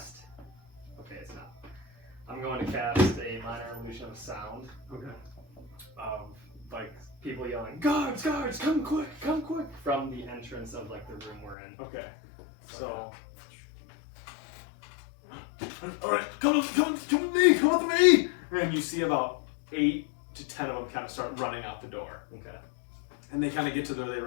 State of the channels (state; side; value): drops out; right; at 11.6 s